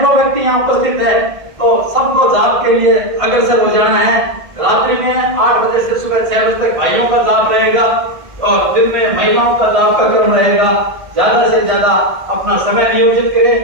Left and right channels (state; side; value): late; left; 1.6 ms